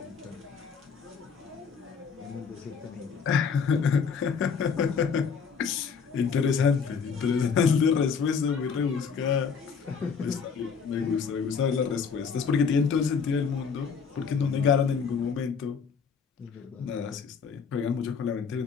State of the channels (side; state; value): right; quieter; 6.0 dB